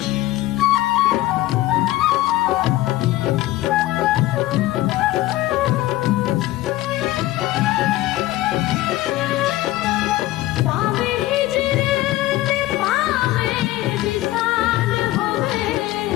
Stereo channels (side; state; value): right; quieter; 16.4 dB